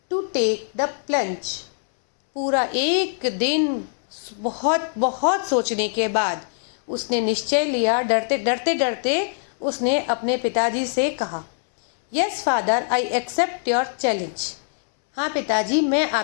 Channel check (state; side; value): silent; right; 64 dB below the other